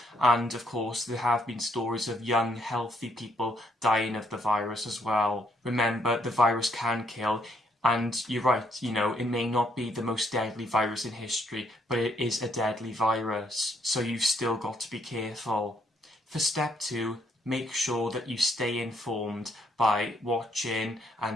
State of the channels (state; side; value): normal; both; correlation 0.72